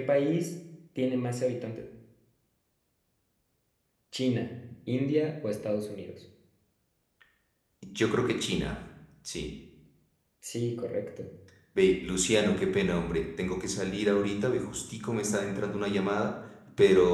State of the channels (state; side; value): identical; both; correlation 1.00